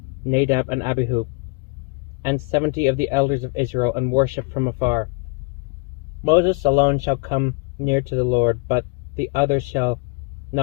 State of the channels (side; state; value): right; quieter; 31.4 dB